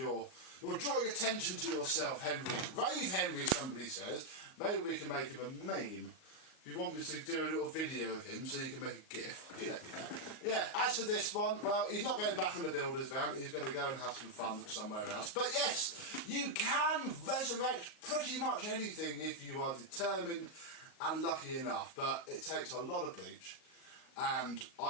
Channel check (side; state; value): right; late; 38 ms